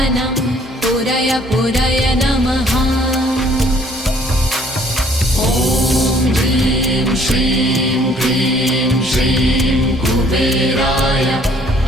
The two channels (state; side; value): normal; both; correlation 0.60